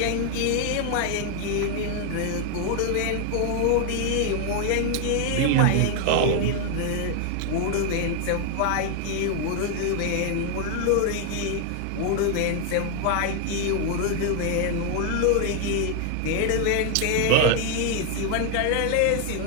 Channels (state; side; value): different; both; correlation 0.00